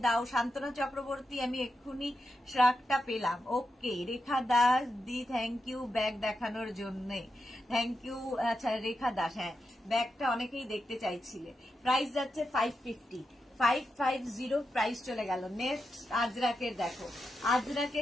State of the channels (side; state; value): both; normal; correlation 0.87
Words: দাও। শান্তনা চক্রবর্তী, আমি এক্ষুনি শ্রাকটা পেলাম। ওকে, রেখা দাস দি থ্যাংক ইউ ব্যাগ দেখানোর জন্য, থ্যাংক ইউ। আচ্ছা রেখা দাস, হ্যাঁ ব্যাগটা অনেকেই দেখতে চাইছিলে। প্রাইস যাচ্ছে 550, 550 প্রাইস চলে গেল। নেক্সট আজরাকের দেখো,